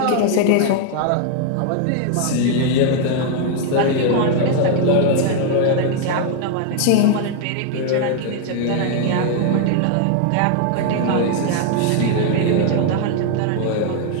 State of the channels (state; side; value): different; both; correlation 0.00